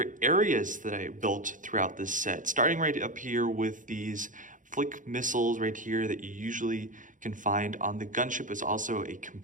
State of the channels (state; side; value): late; left; 0.38 ms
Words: areas that I built throughout this set. Starting right up here with these flick missiles right here that you usually can find on the gunship. Is also a